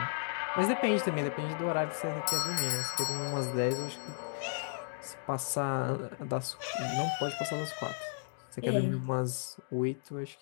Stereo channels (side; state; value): right; silent; digital silence